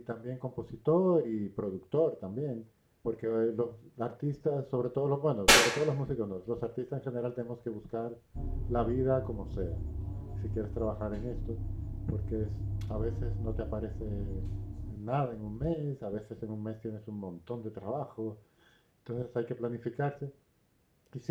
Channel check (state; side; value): identical; both; correlation 1.00